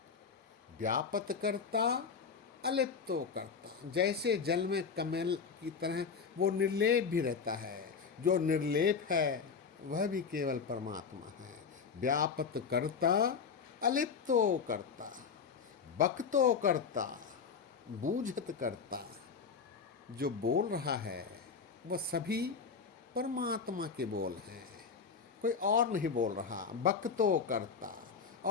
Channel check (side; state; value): right; quieter; 5.8 dB